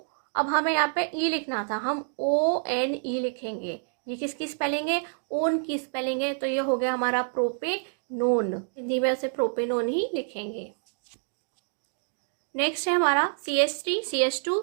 अब हमें यहाँ पे ई लिखना था, हम ONE लिखेंगे। ये किसकी स्पेलिंग है, ओन की स्पेलिंग है। तो ये हो गया हमारा प्रोपेनोन, हिंदी में उसे प्रोपेनोन ही लिखेंगे। नेक्स्ट है हमारा CH3 CH2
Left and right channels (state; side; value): silent; left; digital silence